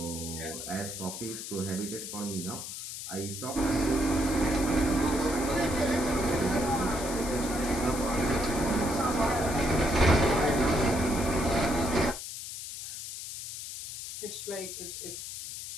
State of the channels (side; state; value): left; noise; hiss, 8 dB below the sound